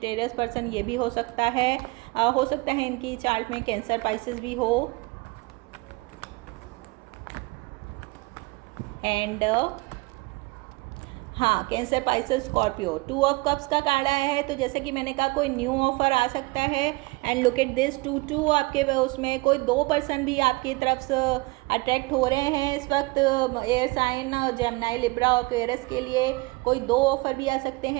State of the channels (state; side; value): quieter; left; 24.6 dB